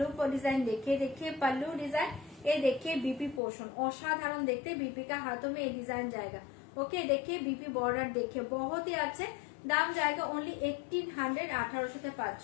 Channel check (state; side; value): drops out; right; at 3.4 s